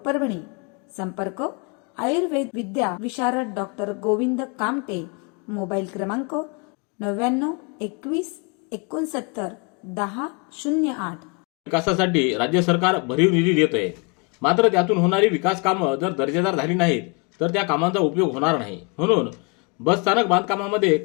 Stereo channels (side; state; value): right; quieter; 32.7 dB